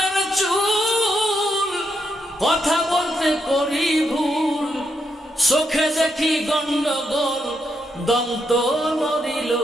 চুল, কথা বলতে করি ভুল, চোখে দেখি গন্ডগোল, দন্ত নড়িল,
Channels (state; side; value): normal; both; correlation 0.80